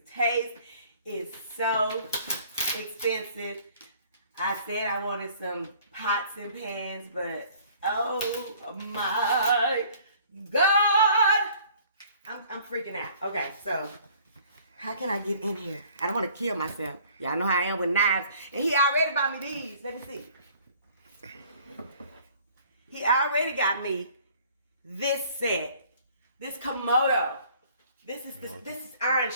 taste is so expensive. I said I wanted some pots and pans, but oh my God, I'm freaking out. Okay, so how can I get in here? I don't want to kill myself. Y'all know how I am with knives. And he already bought me these. Let me see. He already got me this set. This Komodo. This is Iron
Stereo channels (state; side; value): inverted; both; correlation -0.55